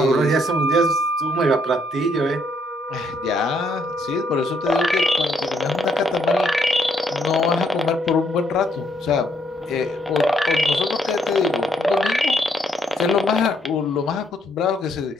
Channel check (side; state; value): both; normal; correlation 0.71